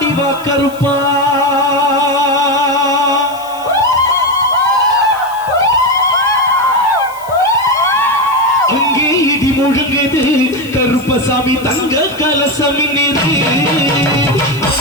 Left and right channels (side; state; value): left; noise; hiss, 21 dB below the sound